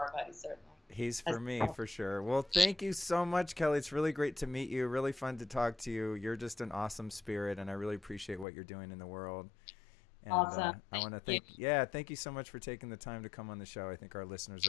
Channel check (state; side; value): drops out; right; at 8.5 s